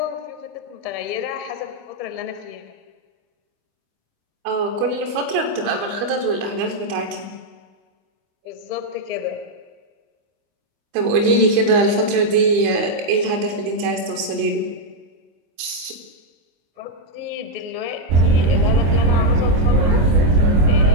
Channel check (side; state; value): left; late; 25 ms